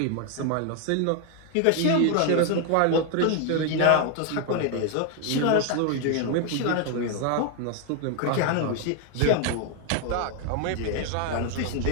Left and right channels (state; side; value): different; both; correlation 0.01